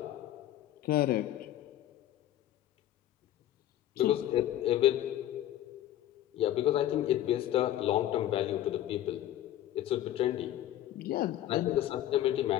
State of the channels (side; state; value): right; quieter; 12.9 dB